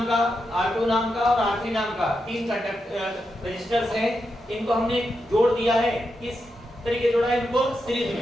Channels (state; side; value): normal; both; correlation 0.86